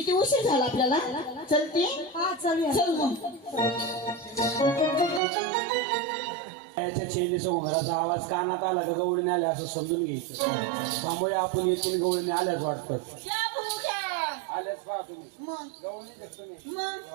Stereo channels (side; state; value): left; drops out; at 5.2 s